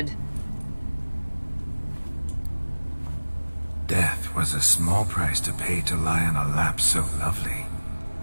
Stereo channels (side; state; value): both; inverted; correlation -1.00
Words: Death was a small price to pay to lie on a lap so lovely,